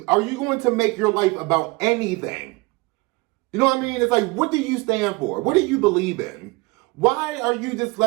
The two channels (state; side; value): quieter; left; 24.7 dB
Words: make your life about anything? You know what I mean? It's like, what do you stand for? What do you believe in? Why are you just